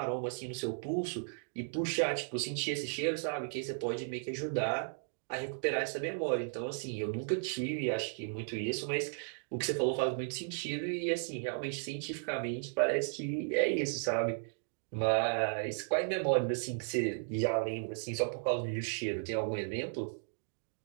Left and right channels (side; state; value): left; silent; digital silence